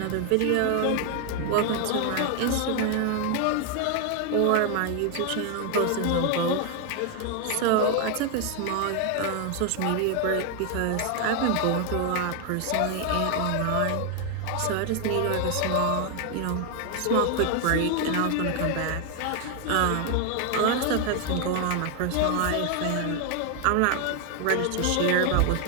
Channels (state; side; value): different; both; correlation 0.00